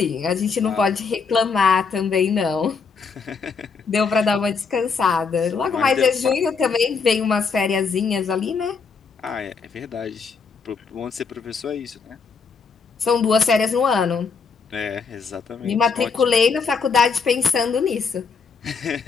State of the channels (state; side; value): quieter; right; 5.2 dB